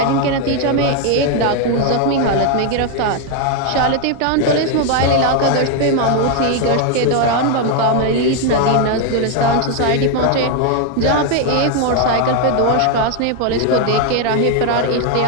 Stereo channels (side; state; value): both; different; correlation 0.01